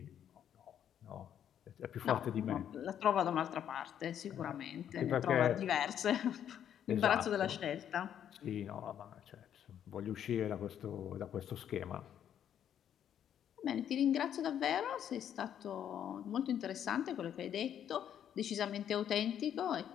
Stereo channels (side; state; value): right; quieter; 9.7 dB